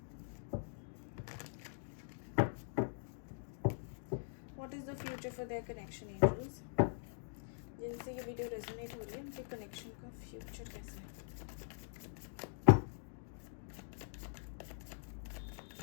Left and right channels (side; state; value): right; silent; digital silence